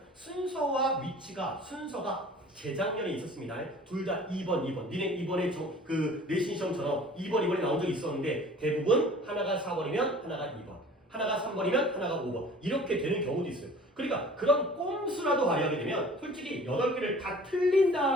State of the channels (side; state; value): both; normal; correlation 0.47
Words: 순서와 위치가 순서가 재작년에 있었습니다. 둘 다 2번. 니네 이번에 그 내신 시험처럼 2번이 나온 적이 있었는데 대부분 하나가 4번이면 하나가 2번, 하나가 3번이면 하나가 5번 이렇게 되는 경우도 있어요. 그러니까 그런 꼼수라도 발휘하게 되면 솔직히 8개를 다